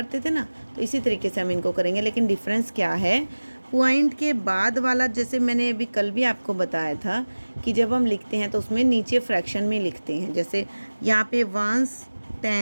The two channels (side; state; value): both; inverted; correlation -1.00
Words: थे ना। तो इसी तरीके से हम इनको करेंगे, लेकिन डिफरेंस क्या है, पॉइंट के बाद वाला, जैसे मैंने अभी कल भी आपको बताया था कि जब हम लिखते हैं तो उसमें नीचे फ्रैक्शन में लिखते हैं। जैसे यहाँ पे 1s